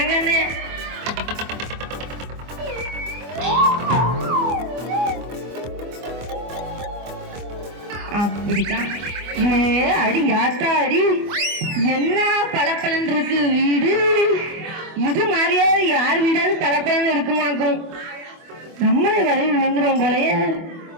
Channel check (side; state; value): left; late; 24 ms